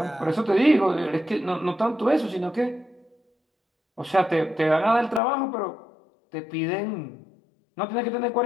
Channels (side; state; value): right; drops out; at 5.2 s